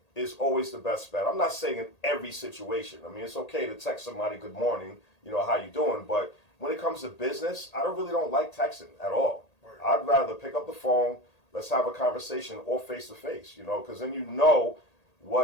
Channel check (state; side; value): late; right; 1.8 ms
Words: is always the best bet. I'm not saying in every situation. I mean, it's okay to text somebody good morning, you know, how you doing? But when it comes to business, I really don't like texting at all. I'd rather pick up the phone, let's have a conversation, or face to face, you know, because then you know